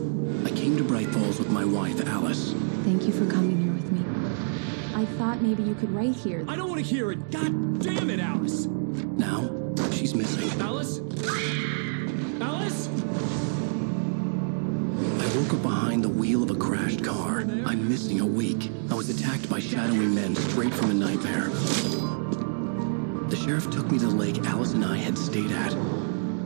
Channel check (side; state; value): left; silent; digital silence